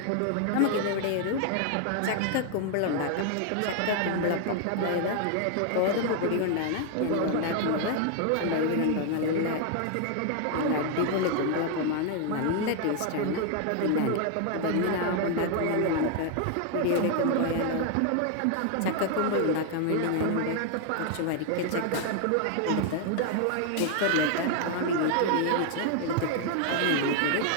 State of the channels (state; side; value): different; both; correlation 0.00